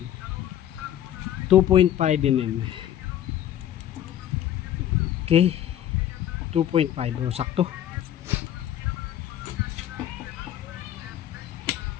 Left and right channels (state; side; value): quieter; right; 11.4 dB